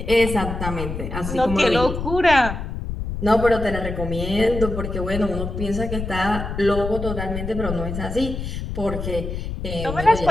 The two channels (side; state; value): left; noise; rumble, 5 dB below the sound